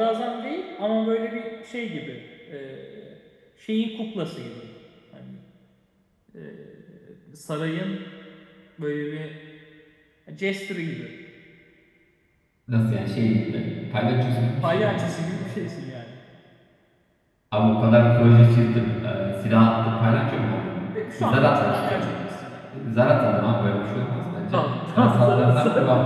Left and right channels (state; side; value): identical; both; correlation 1.00